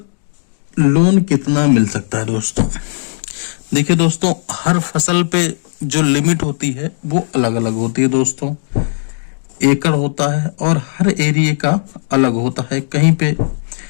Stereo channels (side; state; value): right; silent; digital silence